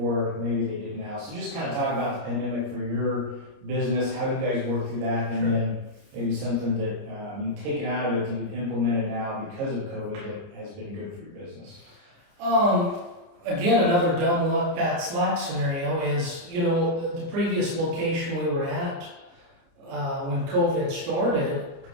maybe they did now. So just kind of talk about the pandemic for your business, how you guys work through that, and then maybe something that you've taken out of it that you've implemented now because of COVID that has been good for your business. Again, another dumb luck, Pat Slack scenario is, the previous location we were at when COVID started,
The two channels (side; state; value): left; late; 29 ms